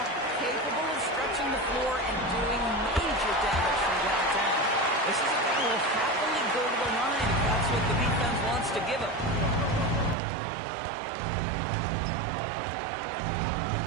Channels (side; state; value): left; drops out; at 10.2 s